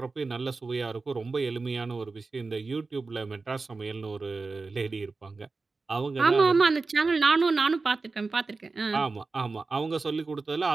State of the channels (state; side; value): quieter; left; 4.0 dB